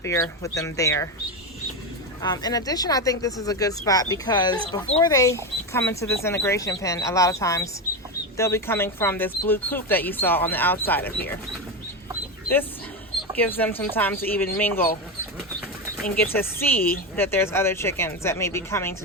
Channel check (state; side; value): normal; both; correlation 0.14